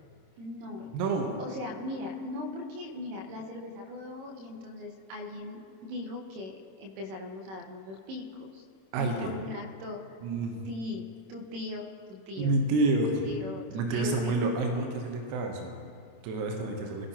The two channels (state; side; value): late; left; 27 ms